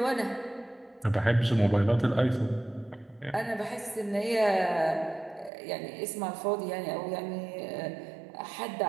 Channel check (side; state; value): left; drops out; at 5.5 s